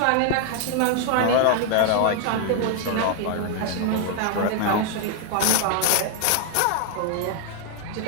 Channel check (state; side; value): different; both; correlation 0.00